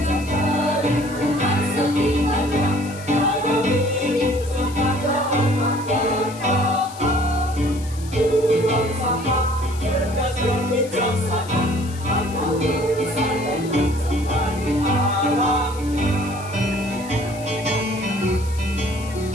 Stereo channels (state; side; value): noise; left; hiss, 18 dB below the sound